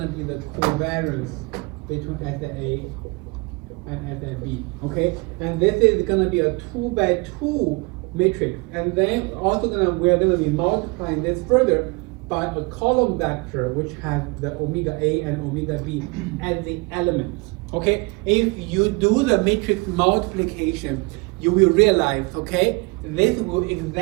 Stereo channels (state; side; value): quieter; left; 27.4 dB